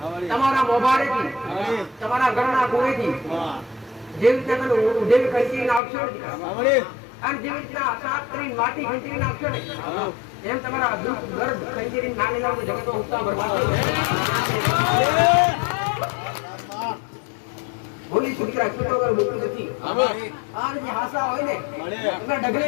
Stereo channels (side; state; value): right; drops out; at 5.8 s